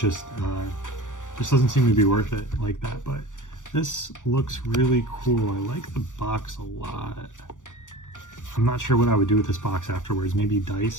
doesn't seem to be worth it like that. But this looks really cool. I like the box a lot. I'm not sure what I would do with this box afterwards, maybe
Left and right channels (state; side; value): late; right; 0.86 ms